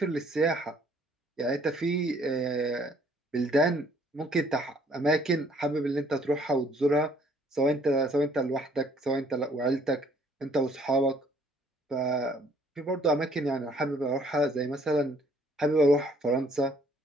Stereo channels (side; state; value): both; normal; correlation 0.62